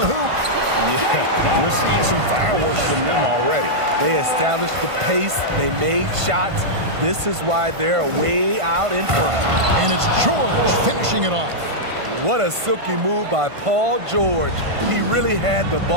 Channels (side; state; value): left; late; 1.5 ms